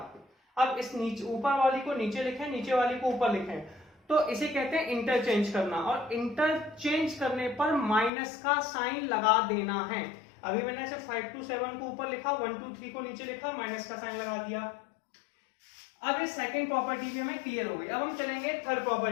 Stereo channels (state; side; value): drops out; right; at 8.1 s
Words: अब इस नीचे ऊपर वाली को नीचे लिखें, नीचे वाली को ऊपर लिखें, तो इसे कहते हैं इंटरचेंज करना। और इंटरचेंज करने पर माइनस का साइन लगा देना है। अभी मैंने ऐसे 5 2 7 को ऊपर लिखा, 1 2 3 को नीचे लिखा, माइनस का साइन लगा दिया। अब ये सेकंड प्रॉपर्टी भी हमें क्लियर हो गई। अब हम चलेंगे थर्ड